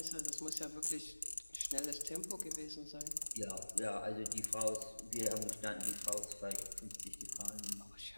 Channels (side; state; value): both; inverted; correlation -1.00